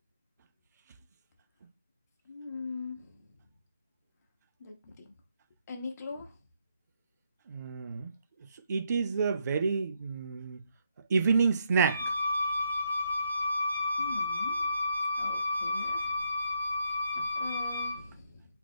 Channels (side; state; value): both; inverted; correlation -0.76